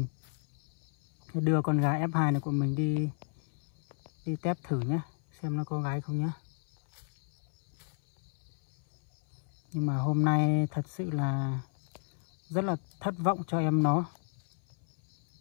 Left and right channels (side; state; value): right; silent; 56 dB below the other